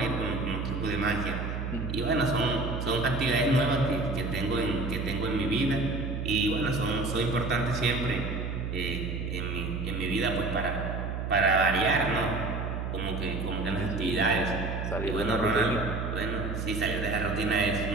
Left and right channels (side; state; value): right; noise; hum, 3 dB below the sound